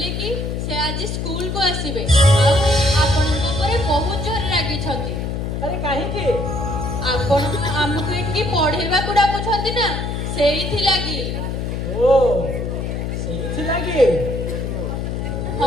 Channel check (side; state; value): left; noise; hum, 3 dB below the sound